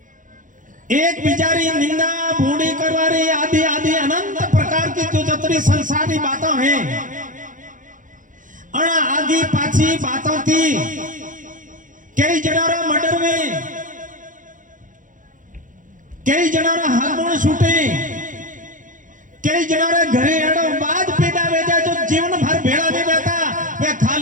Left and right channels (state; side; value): late; left; 0.38 ms